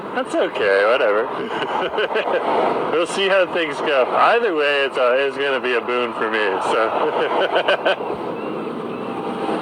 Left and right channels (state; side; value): identical; both; correlation 1.00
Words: That's okay, whatever. We'll see how things go. Either way, it's going to be a boon for me, so.